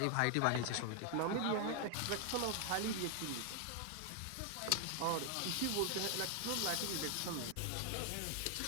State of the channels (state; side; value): different; both; correlation 0.00